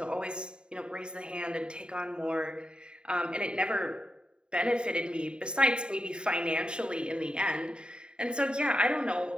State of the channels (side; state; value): left; late; 0.050 ms